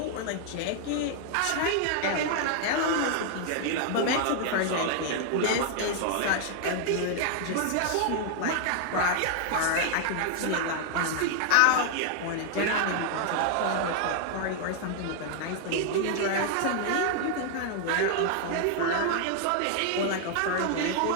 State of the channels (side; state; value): both; different; correlation 0.00